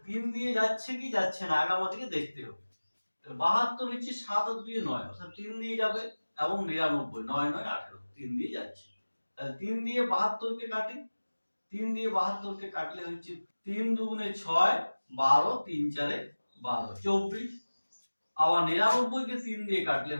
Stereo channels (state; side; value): inverted; both; correlation -1.00